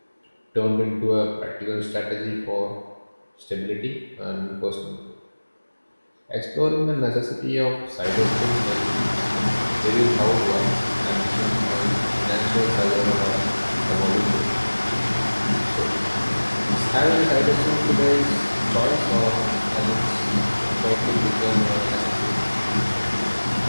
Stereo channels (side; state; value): both; inverted; correlation -1.00